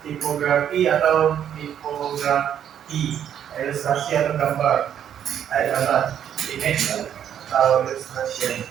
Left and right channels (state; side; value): quieter; left; 9.5 dB